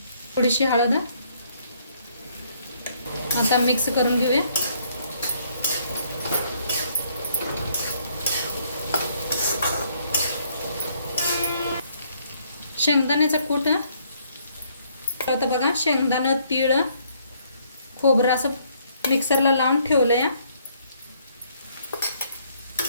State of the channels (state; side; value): inverted; both; correlation -0.67